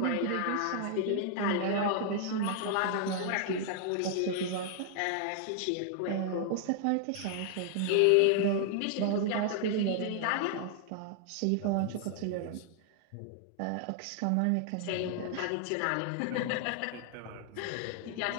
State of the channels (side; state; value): both; different; correlation 0.00